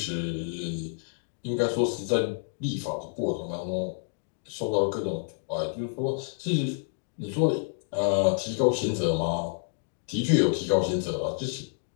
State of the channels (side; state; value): right; silent; digital silence